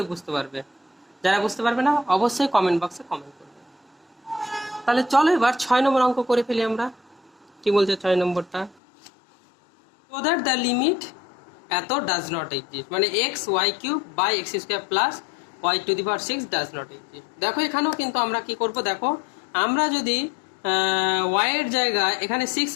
বুঝতে পারবে। যারা বুঝতে পারবে না অবশ্যই কমেন্ট বক্সে কমেন্ট করবে। তাহলে চলো এবার 6 নম্বর অঙ্ক করে ফেলি আমরা। কি বলছে 6 নম্বরটা, so that the limit এত ডাজ নট এক্সিস্ট, মানে x y cube by x square plus y to the power 6 does not exist. দেখো এখানেও কিন্তু আমরা কি করব, দেখো আমরা যদি ওয়াই এর জায়গায় এখানে 6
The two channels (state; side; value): drops out; right; at 8.8 s